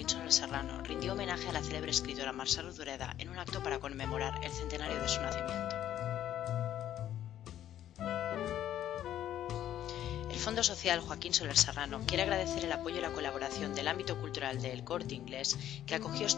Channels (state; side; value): quieter; right; 11.6 dB